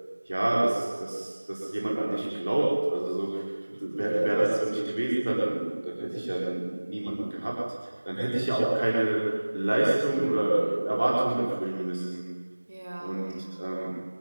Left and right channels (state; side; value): inverted; both; correlation -1.00